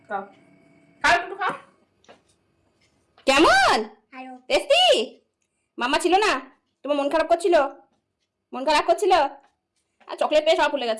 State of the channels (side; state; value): both; identical; correlation 1.00